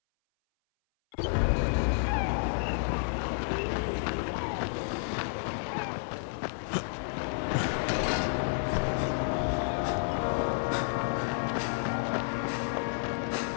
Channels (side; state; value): right; silent; 57 dB below the other